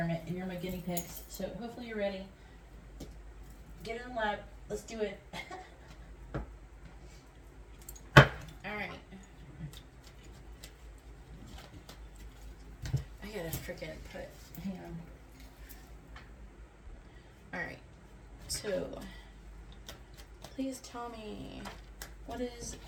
and you're my guinea pigs. So hopefully you're ready. Get in the lab. Let's do it. Alright. I gotta freaking hang on. Alright. So, please tell me, what is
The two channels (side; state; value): both; identical; correlation 1.00